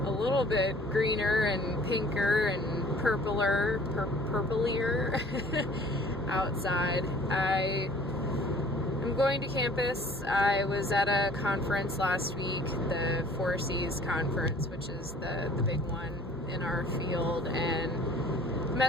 a little bit greener and pinker and purplier outside. I am going to campus. I was at a conference last week, the 4Cs conference, which is the big one in our field, and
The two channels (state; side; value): normal; both; correlation 0.51